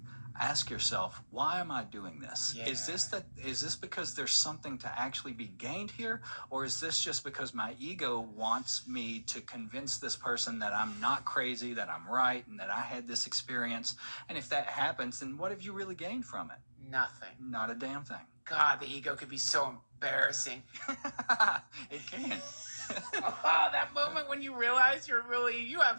ask yourself, why am I doing this? Yeah. Is this because there's something to actually be gained here? Or is this just because my ego wants me to convince this person that I'm not crazy, that I'm right, and that I had this experience? And if that happens, then what have you really gained from it? Nothing. Not a damn thing. God, the ego could be so embarrassing. It can. Oh, that moment when you realize you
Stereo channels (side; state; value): both; inverted; correlation -1.00